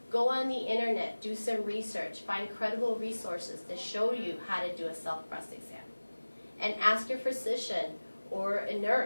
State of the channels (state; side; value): inverted; both; correlation -1.00